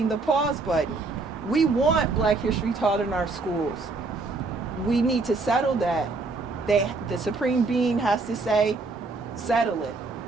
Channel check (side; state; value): left; quieter; 3.7 dB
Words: the pause button. We want Black history taught in our schools. We need to settle that. The supreme being has to say, settle it.